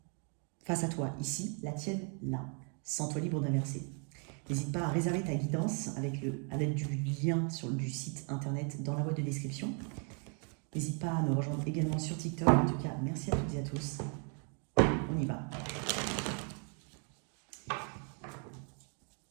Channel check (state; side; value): quieter; left; 38.9 dB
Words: à toi, ici, la tienne, là. Sens-toi libre d'inverser. N'hésite pas à réserver ta guidance à l'aide du lien du site internet dans la boîte de description. N'hésite pas à me rejoindre également sur TikTok. En tout cas, merci à toutes et à tous. On y va.